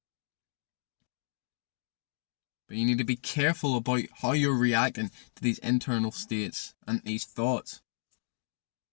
But you need to be careful about how you're reacting to these internal states and these thoughts.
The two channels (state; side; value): silent; right; digital silence